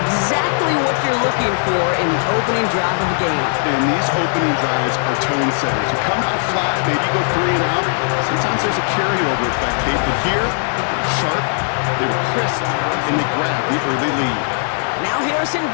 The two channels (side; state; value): right; silent; 58 dB below the other